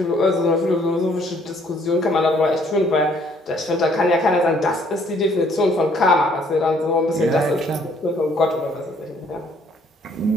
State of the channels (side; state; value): both; normal; correlation 0.63